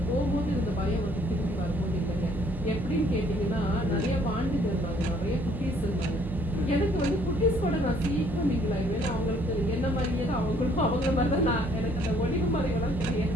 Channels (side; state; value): both; normal; correlation 0.62